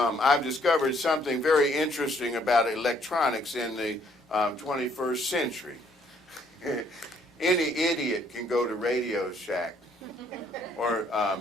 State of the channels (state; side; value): normal; both; correlation 0.66